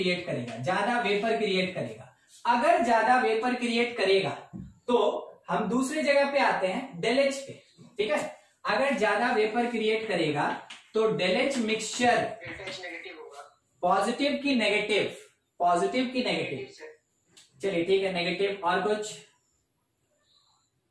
करेगा, ज्यादा वेपर क्रिएट करेगा। अगर ज्यादा वेपर क्रिएट करेगा तो हम दूसरी जगह पे आते हैं, डेल एच पे, ठीक है। अगर ज्यादा वेपर क्रिएट करेगा तो डेल एच मिक्सचर पॉजिटिव की नेगेटिव, चलिए ठीक है, नेगेटिव, और कुछ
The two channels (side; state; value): both; identical; correlation 1.00